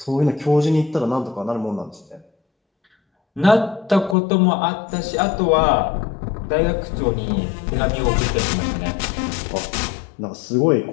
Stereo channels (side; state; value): right; drops out; at 4.2 s